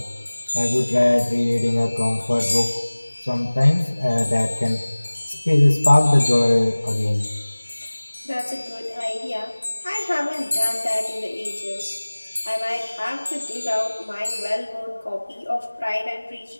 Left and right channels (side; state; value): both; inverted; correlation -1.00